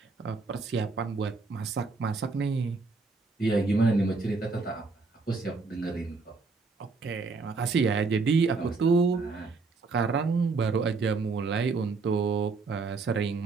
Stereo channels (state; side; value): quieter; left; 4.1 dB